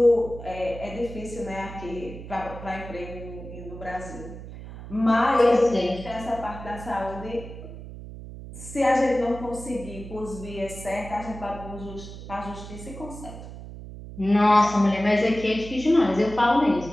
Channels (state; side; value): noise; right; hum, 12 dB below the sound